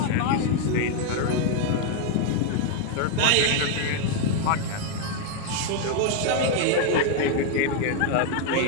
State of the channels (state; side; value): different; both; correlation 0.01